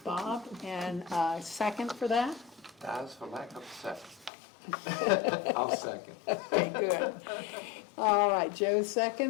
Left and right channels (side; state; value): right; drops out; at 4.3 s